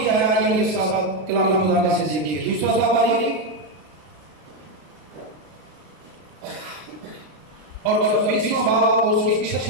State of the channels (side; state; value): left; late; 33 ms